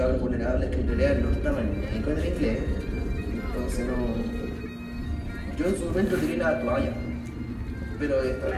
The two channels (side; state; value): both; identical; correlation 1.00